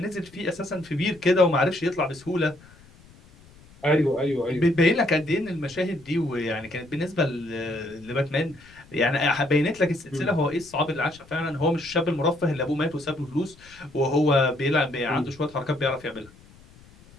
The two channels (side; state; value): left; noise; rumble, 25 dB below the sound